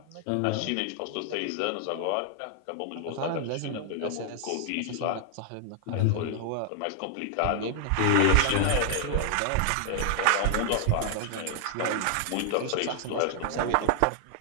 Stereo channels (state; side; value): different; both; correlation 0.00